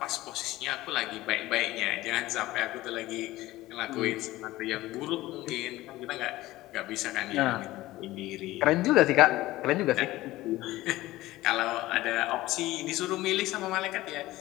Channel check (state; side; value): quieter; right; 17.3 dB